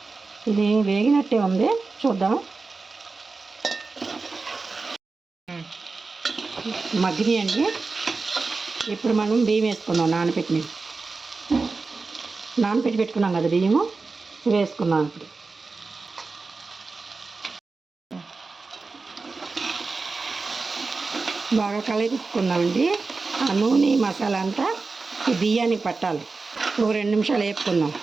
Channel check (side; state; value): left; quieter; 4.0 dB